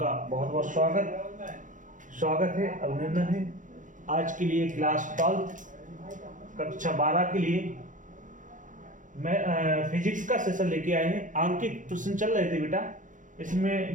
बहुत बहुत स्वागत है, अभिनंदन है। आज के लिए क्लास 12 कक्षा 12 के लिए मैं फिजिक्स का सेशन लेके आए हैं। आंकिक प्रश्न चल रहे थे बेटा। इसमें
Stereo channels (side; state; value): left; late; 0.37 ms